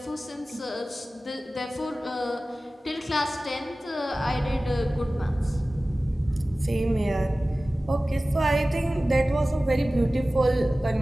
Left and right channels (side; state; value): both; normal; correlation 0.97